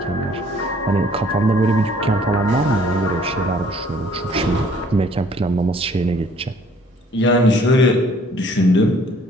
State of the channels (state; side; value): normal; both; correlation 0.58